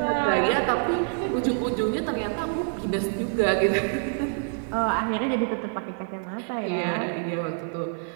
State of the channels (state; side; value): silent; left; 57 dB below the other